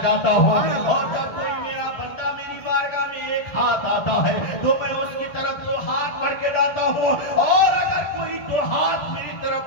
جاتا ہوں. اور جب کوئی میرا بندہ میری بارگاہ میں ایک ہاتھ آتا ہے تو میں اس کی طرف دو ہاتھ بڑھ کے جاتا ہوں. اور اگر کوئی دو ہاتھ میری طرف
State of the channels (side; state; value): right; late; 1.7 ms